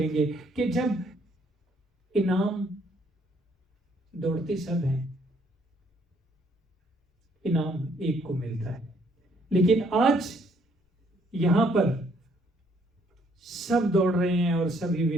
گے کہ جب انعام دوڑتے سب ہیں، انعام ایک کو ملتا ہے، لیکن آج یہاں پر سب دوڑ رہے ہیں اور سبھی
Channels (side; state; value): both; normal; correlation 0.66